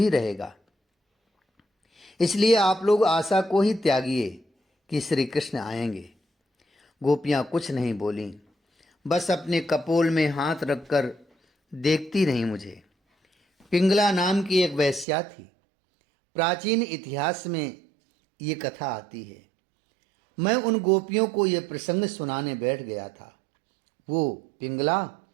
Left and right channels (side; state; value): left; drops out; at 15.1 s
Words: रहेगा। इसलिए आप लोग आशा को ही त्यागिए कि श्री कृष्ण आएंगे। गोपियाँ कुछ नहीं बोलीं, बस अपने कपोल में हाथ रखकर देखती रहीं मुझे। पिंगला नाम की एक वेश्या थी। प्राचीन इतिहास में ये कथा आती है। मैं उन गोपियों को ये प्रसंग सुनाने बैठ गया था। वो पिंगला